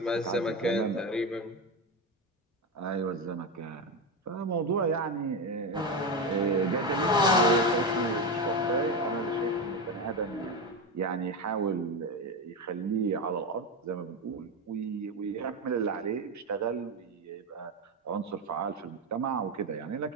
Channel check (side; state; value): both; normal; correlation 0.15